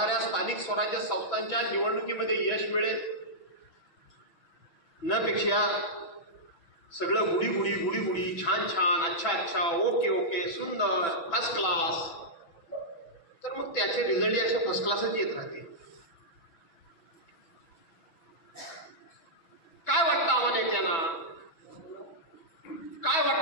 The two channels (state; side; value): late; right; 6.0 ms